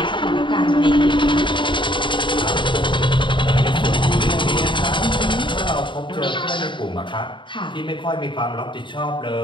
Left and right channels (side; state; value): right; late; 0.23 ms